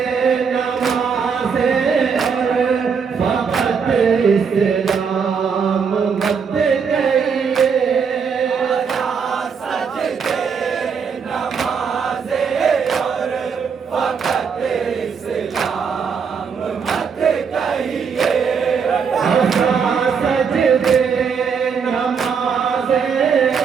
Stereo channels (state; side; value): quieter; left; 6.2 dB